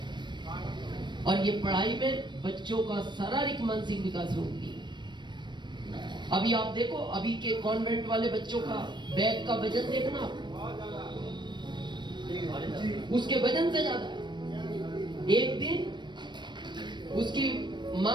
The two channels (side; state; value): left; late; 0.22 ms